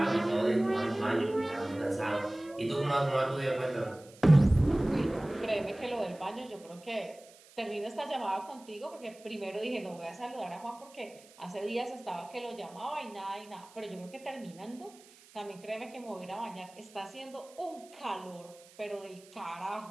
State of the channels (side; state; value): right; noise; hiss, 24 dB below the sound